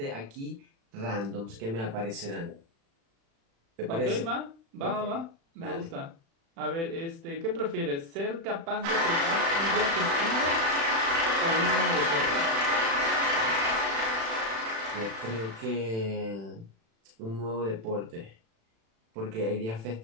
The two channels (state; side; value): late; left; 36 ms